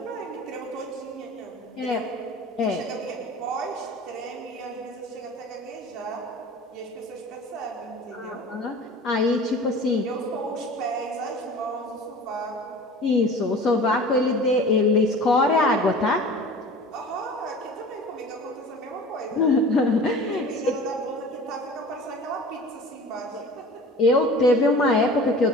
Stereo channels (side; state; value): both; normal; correlation 0.40